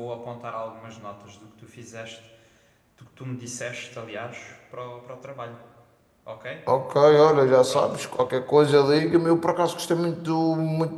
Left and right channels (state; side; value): identical; both; correlation 1.00